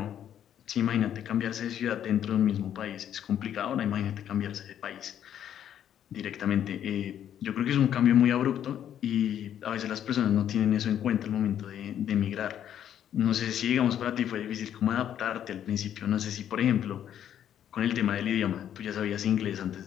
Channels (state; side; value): quieter; right; 10.1 dB